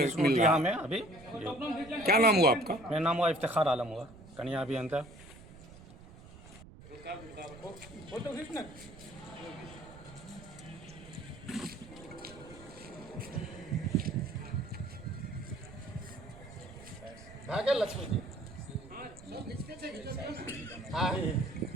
रहा यहाँ है। में अभी क्या नाम हुआ आपका? मेरा नाम हुआ इफ्तिखार आलम हुआ, कन्या अभियंता। लक्ष्मी जी हाँ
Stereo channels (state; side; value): noise; right; rumble, 18 dB below the sound